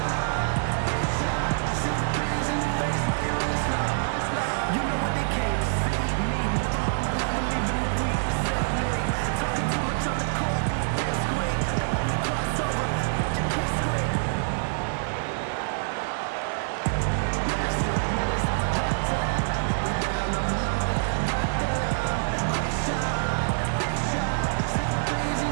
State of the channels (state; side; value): silent; left; digital silence